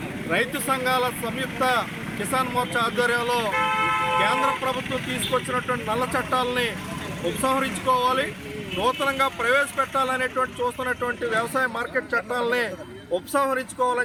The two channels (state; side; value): identical; both; correlation 1.00